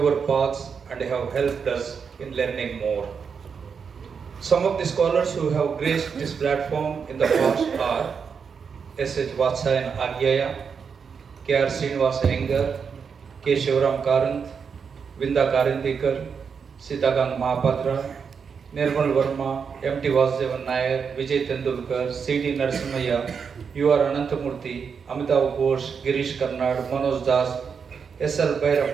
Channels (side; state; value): left; quieter; 6.2 dB